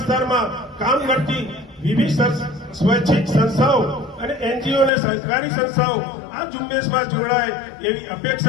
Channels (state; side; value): drops out; right; at 4.9 s